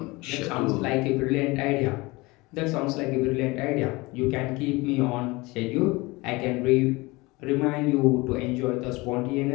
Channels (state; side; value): quieter; right; 23.2 dB